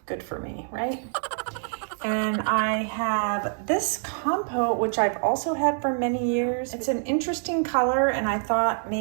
good for me, right? And I have this compote, which I've also had for many years. It's an interesting color, and I thought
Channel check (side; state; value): left; silent; 61 dB below the other